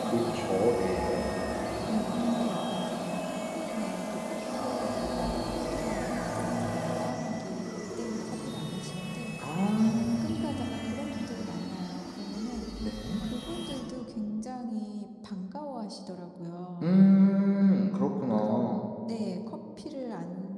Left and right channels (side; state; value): both; identical; correlation 1.00